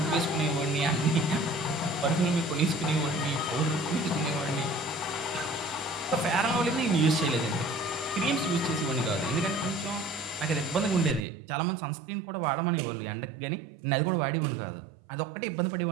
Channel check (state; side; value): drops out; left; at 11.2 s